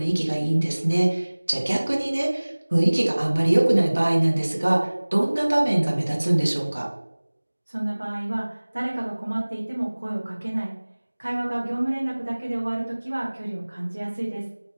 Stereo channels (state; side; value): inverted; both; correlation -1.00